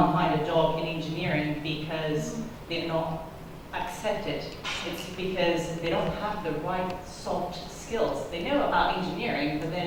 find a job in engineering because they're not accepted. It's because they don't have the right soft skills. They know about engineering, but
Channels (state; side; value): identical; both; correlation 1.00